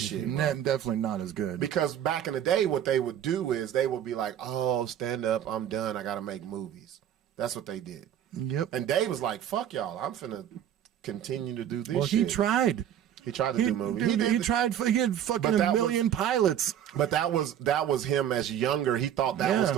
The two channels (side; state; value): left; quieter; 10.2 dB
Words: Definitely not as good. Because back in the day, what they would do is they would be like, "Oh, stand up, I'm done. I got to make movies." That's what they did. Yep. And Dave was like, "Fuck y'all, I'm finna continue to do this." Well, shit. he tried. He tried to do movies. Dude, he did, tried. He had fucking But a that million pilots. but that was him as younger. He thought that was Yeah.